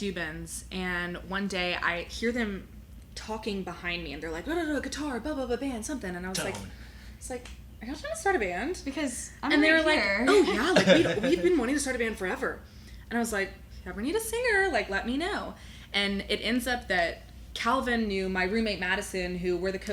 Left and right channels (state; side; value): identical; both; correlation 1.00